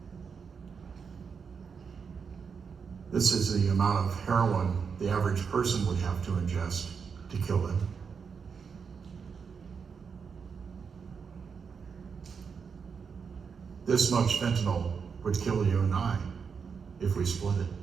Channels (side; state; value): left; quieter; 6.0 dB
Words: This is the amount of heroin the average person would have to ingest to kill them. This much fentanyl would kill you and I if we split it.